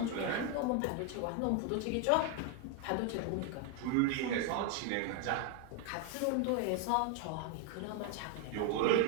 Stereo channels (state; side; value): different; both; correlation 0.01